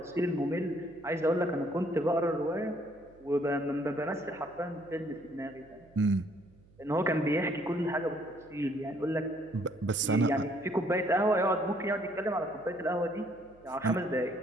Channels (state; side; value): noise; right; hum, 27 dB below the sound